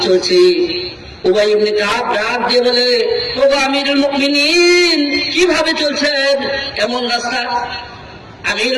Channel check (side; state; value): both; identical; correlation 1.00